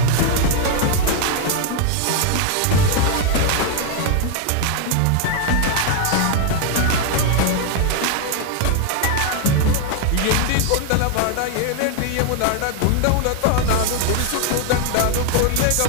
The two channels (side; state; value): both; different; correlation 0.00